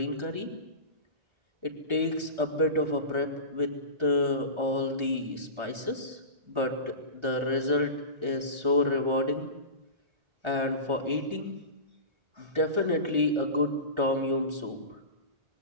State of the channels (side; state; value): left; late; 1.4 ms